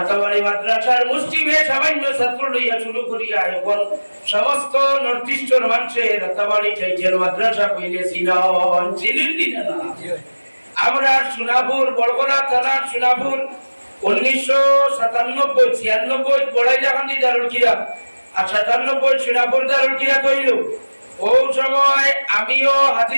মাদ্রাসার মুসলিমে সামান্য ছাত্র লইয়া শুরু করিয়া এখন সমস্ত নর্থ ইস্টের মানুষের রাতাবাড়ি টাইটেল মাদ্রাসা কইলে চিনেন না। আমরা সোনাপুর বড়গোলা থানার সোনাপুর 1997-96 বড়াইলাকান্দি দারুল কিরাত আর 97 সোনাপুর দারুল কিরাত হইল। ও সময় আমিও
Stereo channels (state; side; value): inverted; both; correlation -1.00